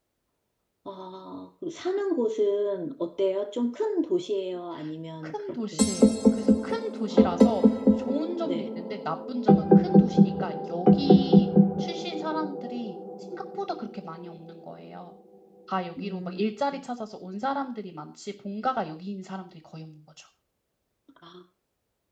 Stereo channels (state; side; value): identical; both; correlation 1.00